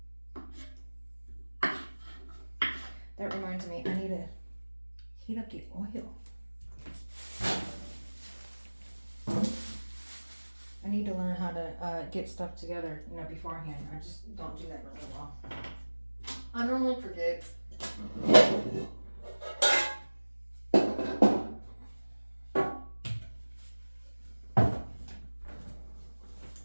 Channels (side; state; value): both; inverted; correlation -1.00